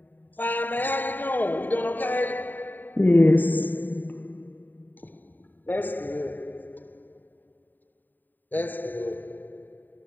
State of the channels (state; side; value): late; right; 0.089 ms